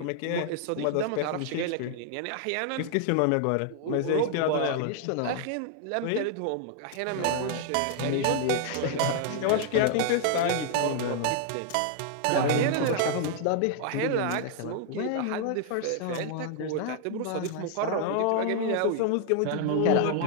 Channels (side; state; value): both; different; correlation -0.01